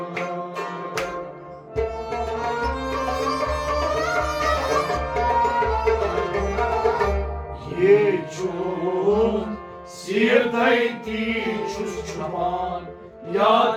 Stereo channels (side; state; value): both; identical; correlation 1.00